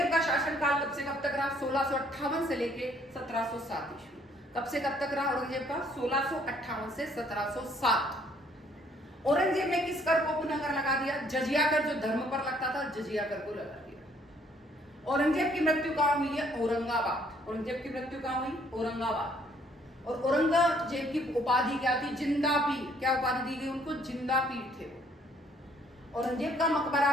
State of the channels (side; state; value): both; normal; correlation 0.64